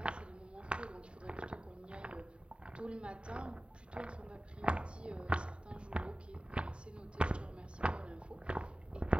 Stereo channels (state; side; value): late; left; 0.054 ms